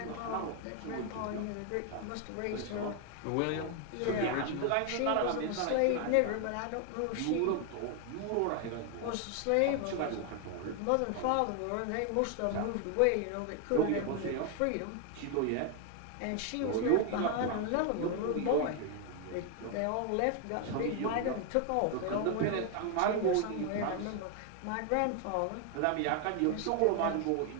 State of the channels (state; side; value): different; both; correlation 0.01